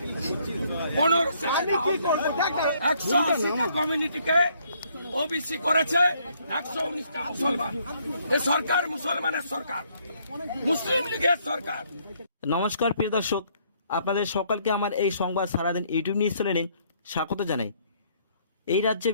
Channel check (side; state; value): both; inverted; correlation -0.67